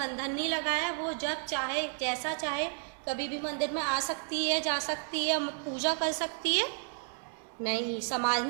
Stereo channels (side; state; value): left; silent; 56 dB below the other